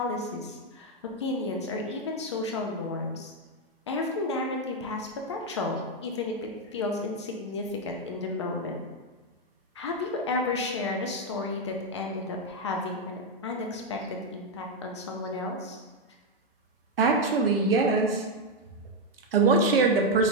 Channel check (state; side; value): normal; both; correlation 0.04